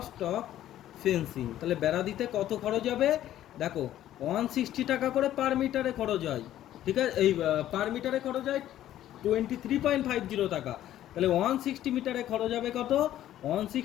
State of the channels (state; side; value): quieter; right; 12.6 dB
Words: ফেন্সিং তাহলে বেড়া দিতে কত খরচ হবে? দেখো 160 টাকা করে পার মিটারে খরচ হয়। ঠিক আছে, এই পার মিটারে খরচ হয় 23.50 টাকা। তাহলে 160 মিটারে খরচ হবে কত?